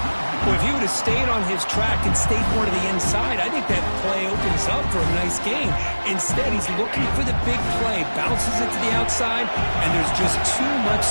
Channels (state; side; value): inverted; both; correlation -1.00